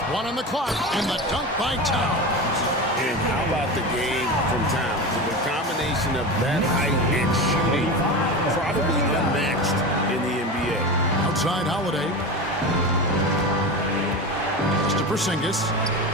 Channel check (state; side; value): normal; both; correlation 0.25